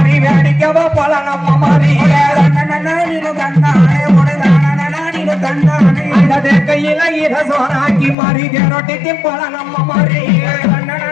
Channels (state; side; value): drops out; right; at 8.2 s